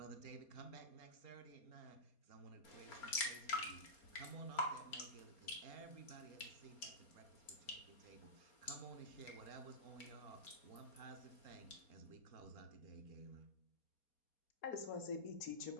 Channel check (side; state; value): right; late; 4.3 ms